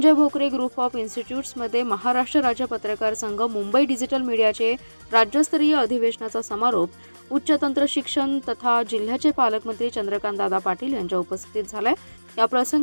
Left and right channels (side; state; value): both; inverted; correlation -1.00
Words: भोकरे ग्रुप ऑफ इन्स्टिट्यूट्समध्ये महाराष्ट्र राज्य पत्रकार संघ मुंबई डिजिटल मीडियाचे राज्यस्तरीय अधिवेशनाचा समारोप उच्च तंत्र शिक्षण तथा जिल्ह्याचे पालकमंत्री चंद्रकांत दादा पाटील यांच्या उपस्थितीत झालाय। या